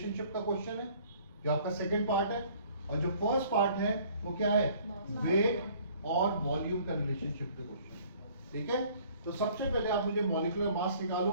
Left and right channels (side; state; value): both; inverted; correlation -0.56